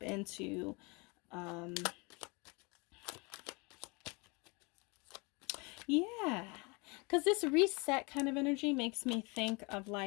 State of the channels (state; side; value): quieter; right; 29.0 dB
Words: into yeah, because this reset kind of energy makes me think of